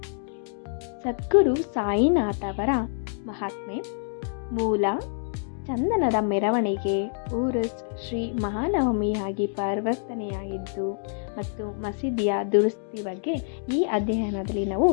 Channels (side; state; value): right; silent; digital silence